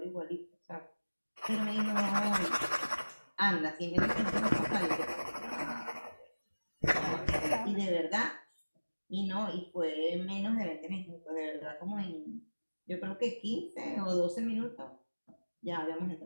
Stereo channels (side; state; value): both; inverted; correlation -1.00